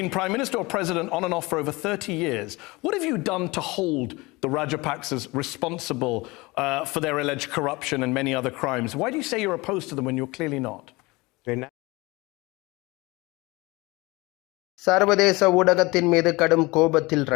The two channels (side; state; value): right; quieter; 23.3 dB